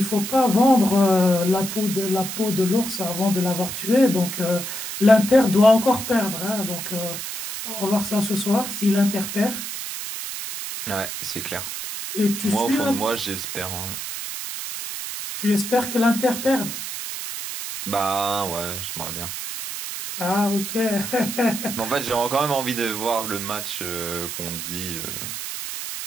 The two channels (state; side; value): noise; right; hiss, 6 dB below the sound